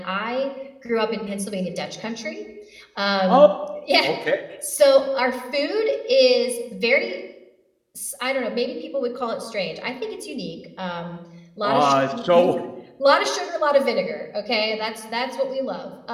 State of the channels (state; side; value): identical; both; correlation 1.00